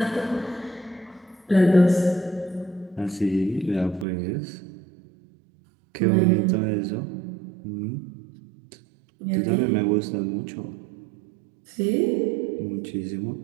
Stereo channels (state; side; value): drops out; left; at 4.0 s